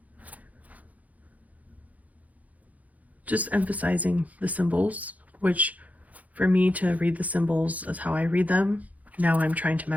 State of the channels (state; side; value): late; left; 0.075 ms